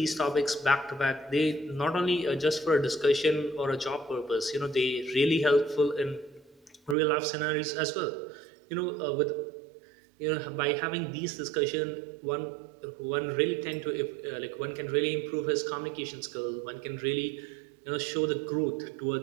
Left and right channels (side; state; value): left; drops out; at 7.0 s